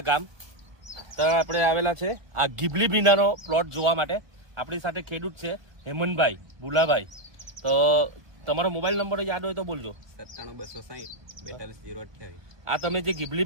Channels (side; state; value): left; late; 1.2 ms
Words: ગામ ત્યાં આપણે આવેલા છે આ ગીબલી ભીંડાનો પ્લોટ જોવા માટે. આપણી સાથે ખેડૂત છે હેમંતભાઈ ભુલાભાઈ. તો તમારો મોબાઈલ નંબર યાદ હોય તો બોલજો. 97 આ તમે જે